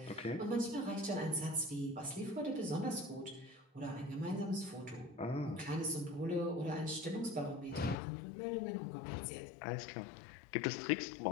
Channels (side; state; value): right; drops out; at 8.0 s